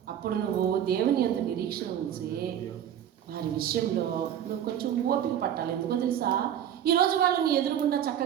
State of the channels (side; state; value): left; quieter; 10.0 dB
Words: అప్పుడు నువ్వు దేవుని యందు నిరీక్షణ ఉంచి వారి విషయంలో నువ్వు కొంచెం ఓపిక పట్టాలి. ఎందుకో తెలుసా? ఈరోజు వాళ్ళు నీ ఎదురుగుండా